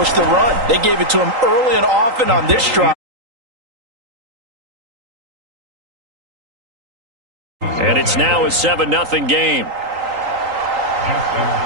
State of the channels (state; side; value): late; left; 3.8 ms